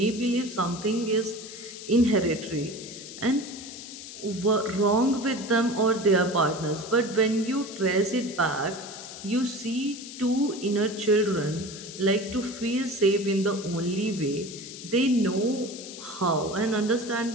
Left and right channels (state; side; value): noise; left; hiss, 12 dB below the sound